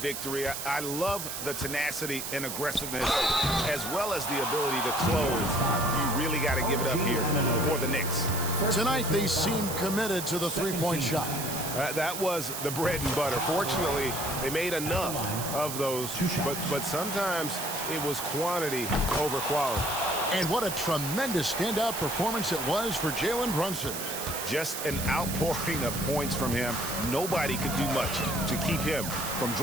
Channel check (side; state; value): right; noise; hiss, 5 dB below the sound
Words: I love the tenacity and aggressiveness, as well as the ability to close. You really got to give it up here for the Knicks. Tonight, they seem committed to the 3-point shot. That was the bread and butter. Fortunately, they made enough of those, but sometimes it was quantity over quality. And what a tremendous standout performance it was for Jalen Brunson. Just an outpouring of points from him. Nobody could do much to keep him from